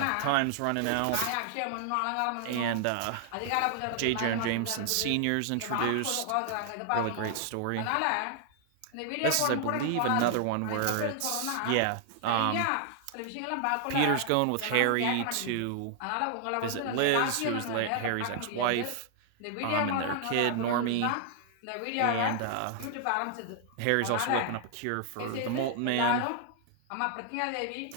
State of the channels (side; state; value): both; different; correlation 0.00